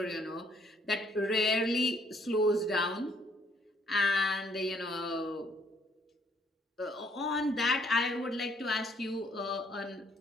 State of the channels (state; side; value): normal; both; correlation 0.66